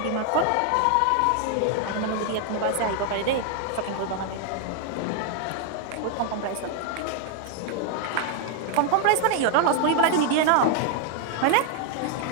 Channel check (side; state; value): both; different; correlation 0.00